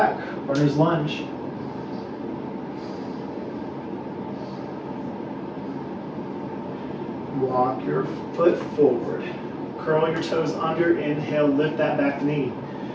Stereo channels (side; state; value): both; identical; correlation 1.00